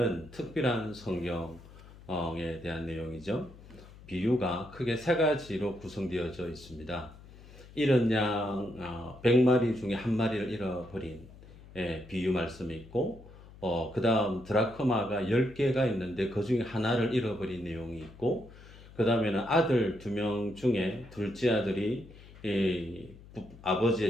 특별한 성경에 대한 내용이죠. 비유가 크게 세 가지로 구성되어져 있습니다. 잃은 양 100마리 중에 한 마리를 잃어버린 비유 말씀이 있고, 그 다음 드라크마가 10개가 있는데 그 중에 하나를 잃어버린 내용이 있고, 그 다음에는 아들 2명 중에 둘째 아들이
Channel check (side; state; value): left; noise; hum, 20 dB below the sound